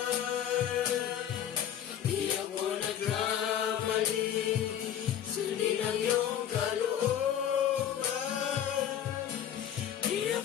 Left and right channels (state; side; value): quieter; right; 10.0 dB